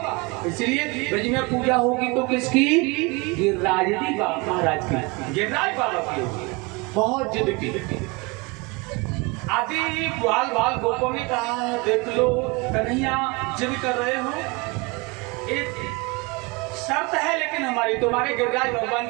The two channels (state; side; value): quieter; left; 26.9 dB